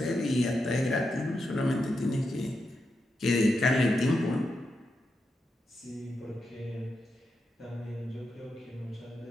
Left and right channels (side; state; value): both; normal; correlation 0.86